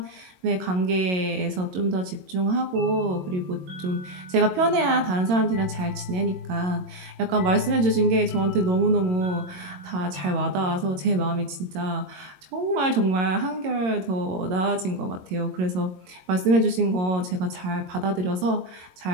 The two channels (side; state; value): left; late; 22 ms